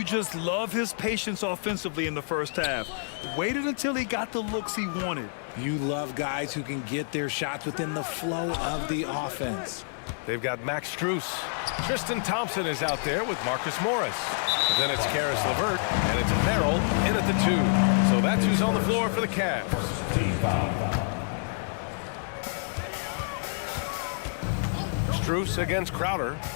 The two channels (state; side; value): silent; right; 59 dB below the other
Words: just love his patience offensively in the first half. Waited until he got the looks he wanted. You love guys who can get their shots within the flow of the offense. They've got Max Strus. Tristan Thompson is out there with Marcus Morris. But then it's Karis LeVert, and it's Merrill in at the 2. So that's who's on the floor for the Cavs. Team foul. Strus against Crowder.